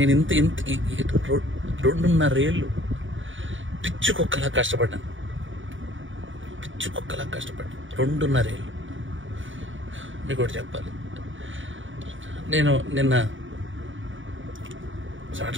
ఇంత 2.5 ఏళ్ళు పిచ్చుకొక్కలా కష్టపడ్డాను, 2.5 ఏళ్ళు. మీకు ఒకటి చెప్పాలి, నేను నిన్న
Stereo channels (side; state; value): left; late; 0.56 ms